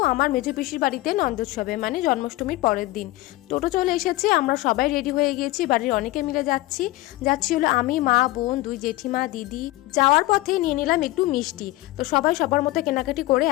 আমার মেজো পিসির বাড়িতে নন্দোৎসবে, মানে জন্মাষ্টমীর পরের দিন। টোটো চলে এসেছে, আমরা সবাই রেডি হয়ে গিয়েছি, বাড়ির অনেকে মিলে যাচ্ছি হলো আমি, মা, বোন, দুই জেঠিমা, দিদি। যাওয়ার পথে নিয়ে নিলাম একটু মিষ্টি। তো সবাই সবার মতো কেনাকাটি করে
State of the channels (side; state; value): right; quieter; 18.5 dB